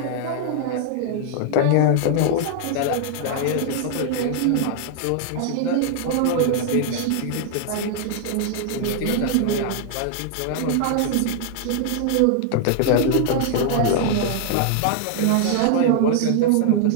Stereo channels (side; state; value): both; different; correlation -0.01